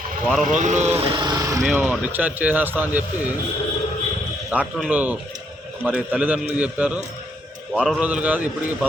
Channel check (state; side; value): normal; both; correlation 0.73